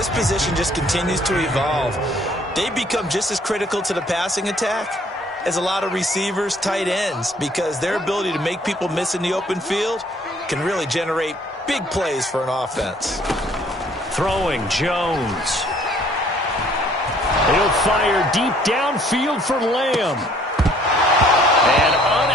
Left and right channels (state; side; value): normal; both; correlation 0.60